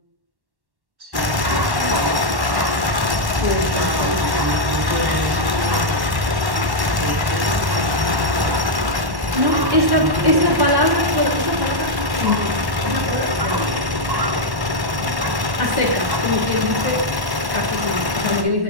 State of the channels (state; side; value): late; left; 1.1 ms